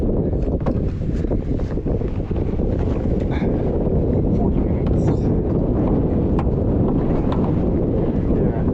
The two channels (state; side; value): identical; both; correlation 1.00